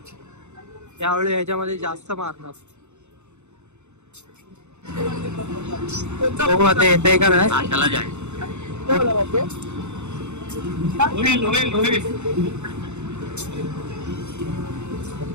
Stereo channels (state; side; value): late; left; 0.83 ms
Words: यावेळी ह्याच्यामध्ये जास्त मारणार. हो आता येते का नाही.